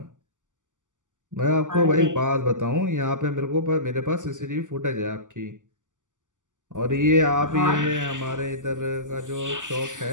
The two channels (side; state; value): left; late; 0.87 ms